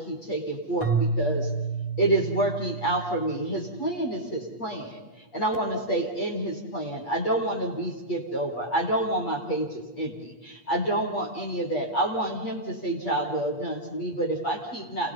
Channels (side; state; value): right; late; 8.4 ms